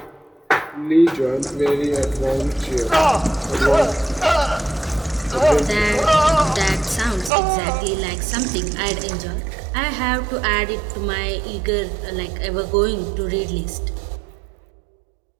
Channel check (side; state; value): left; drops out; at 7.3 s